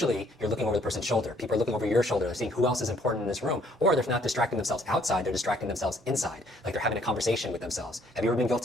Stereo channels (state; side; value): normal; both; correlation 0.64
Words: you're looking over the person's shoulder. People are looking over your shoulder, they're seeing who else is important in this room, or they're not distracting themselves outside, they're distracting themselves inside, like they're having a conversation with themselves. Have you ever been